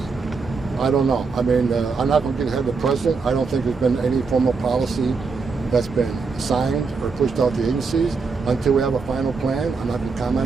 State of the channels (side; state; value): left; quieter; 4.7 dB